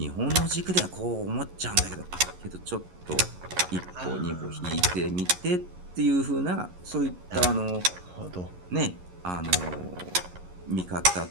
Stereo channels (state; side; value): late; left; 11 ms